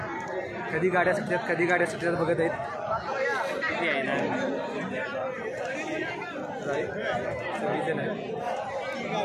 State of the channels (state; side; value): identical; both; correlation 1.00